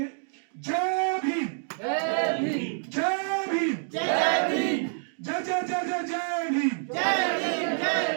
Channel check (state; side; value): silent; left; digital silence